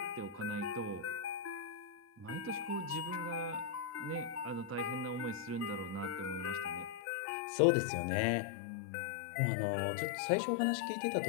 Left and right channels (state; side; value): drops out; right; at 7.0 s